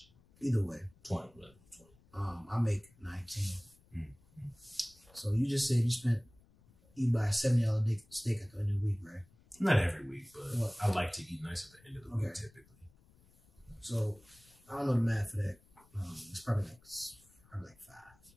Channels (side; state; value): left; noise; rumble, 29 dB below the sound